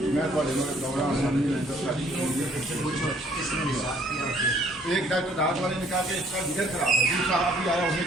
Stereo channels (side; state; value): both; normal; correlation 0.61